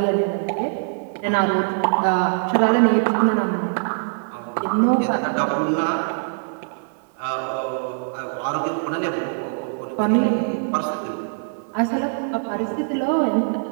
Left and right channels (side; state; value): left; silent; 64 dB below the other